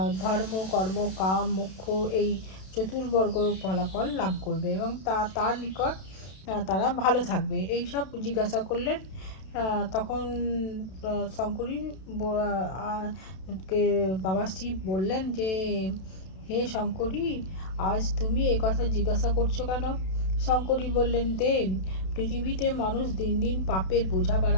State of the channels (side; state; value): right; late; 32 ms